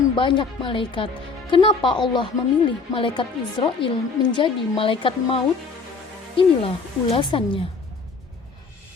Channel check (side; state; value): right; quieter; 4.5 dB